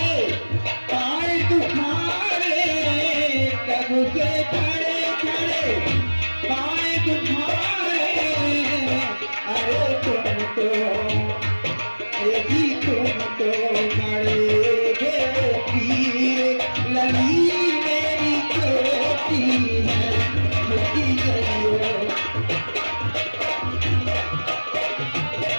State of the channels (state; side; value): inverted; both; correlation -1.00